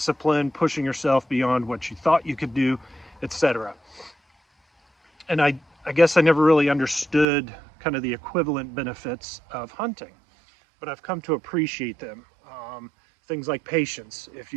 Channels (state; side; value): drops out; left; at 7.2 s